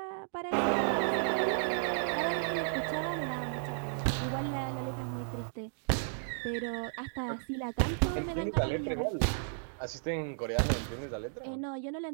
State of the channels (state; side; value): silent; left; digital silence